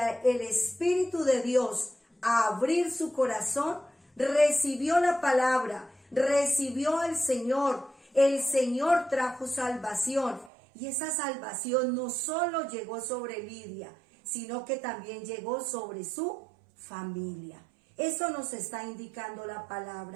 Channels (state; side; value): drops out; left; at 10.5 s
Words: Espíritu de Dios, a abrir su corazón, recibió la palabra, recibió al Señor. El Señor trajo salvación, y esa salvación no solo llegó sobre Lidia, sino que también llegó sobre su familia. Eso nos está indicando la